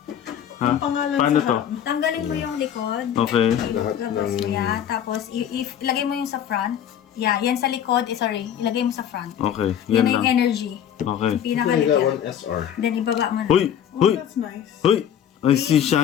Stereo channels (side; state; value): right; quieter; 9.5 dB